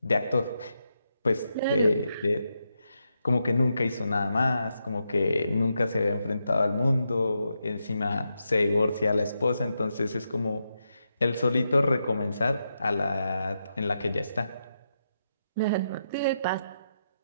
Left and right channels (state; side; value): inverted; both; correlation -0.84